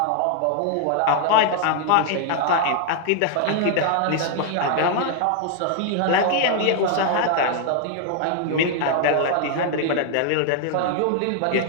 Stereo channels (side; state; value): both; different; correlation 0.00